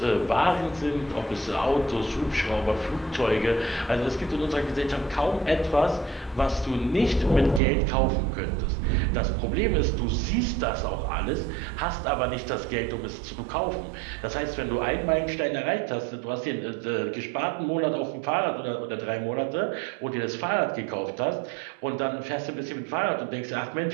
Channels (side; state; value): left; drops out; at 7.6 s